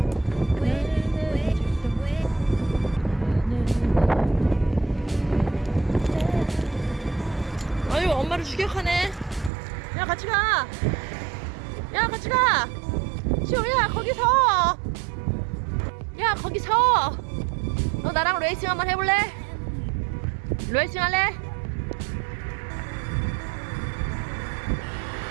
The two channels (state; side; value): drops out; left; at 9.5 s